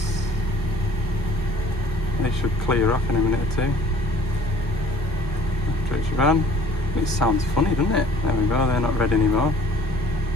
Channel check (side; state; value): both; normal; correlation 0.53